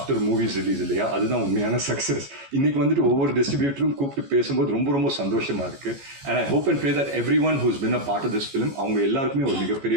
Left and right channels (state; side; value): late; left; 14 ms